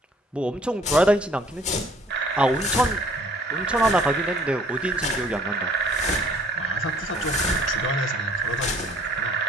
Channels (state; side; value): normal; both; correlation 0.58